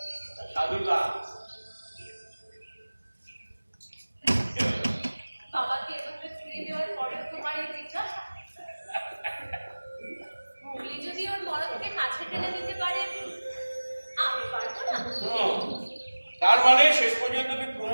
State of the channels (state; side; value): inverted; both; correlation -1.00